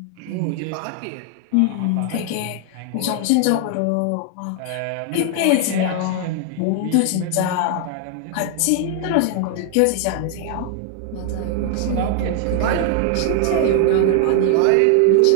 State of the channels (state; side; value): different; both; correlation 0.00